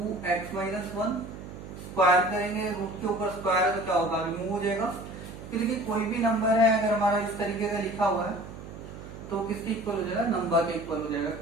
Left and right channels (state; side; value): noise; right; hum, 13 dB below the sound